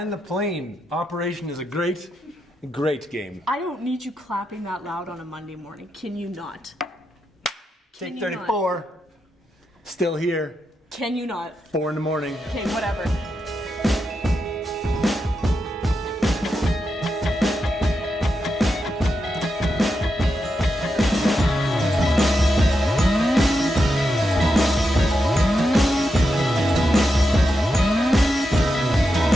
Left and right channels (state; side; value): normal; both; correlation 0.86